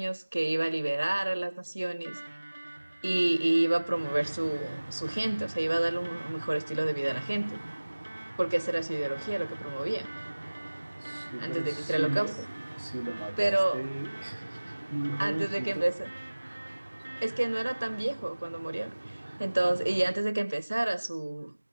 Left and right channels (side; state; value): both; inverted; correlation -1.00